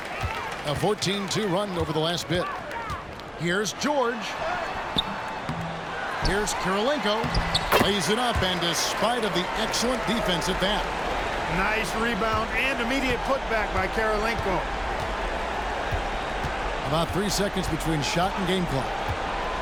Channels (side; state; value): both; identical; correlation 1.00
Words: A 14-2 run over the last bit. Here's George. Here's Kirilenko. Lays it up, and despite of the excellent defense at that. Nice rebound and immediate putback by Kirilenko. About 3 seconds between shot and game clock.